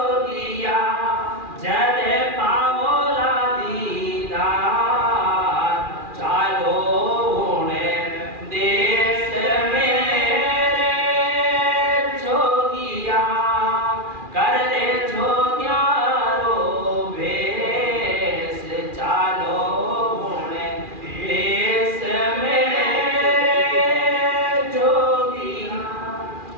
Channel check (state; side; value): late; left; 2.4 ms